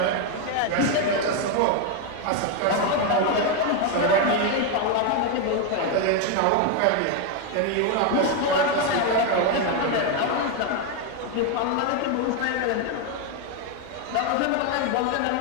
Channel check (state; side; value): different; both; correlation 0.01